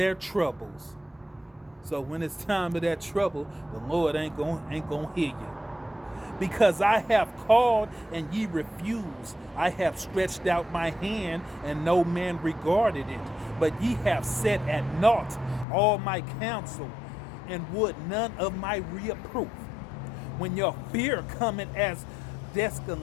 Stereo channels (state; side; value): drops out; right; at 15.7 s